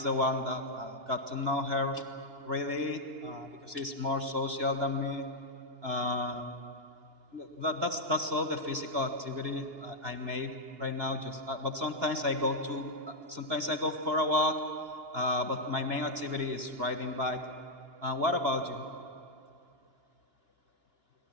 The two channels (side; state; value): left; late; 2.8 ms